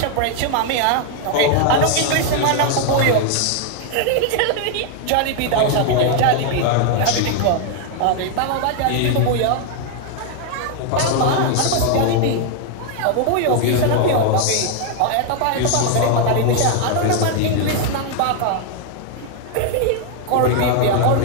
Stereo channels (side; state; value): both; different; correlation 0.00